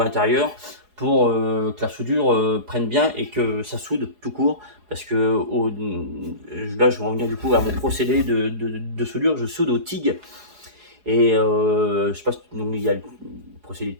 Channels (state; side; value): late; left; 4.8 ms